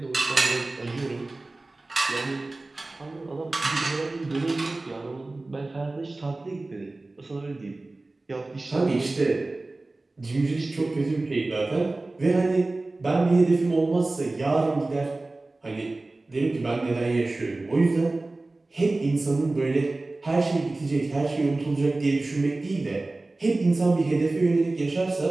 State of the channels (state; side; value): quieter; left; 3.1 dB